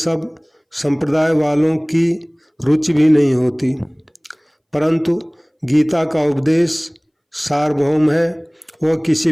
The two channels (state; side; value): identical; both; correlation 1.00